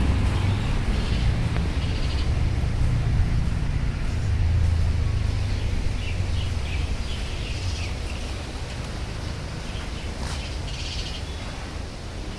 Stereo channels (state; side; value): identical; both; correlation 1.00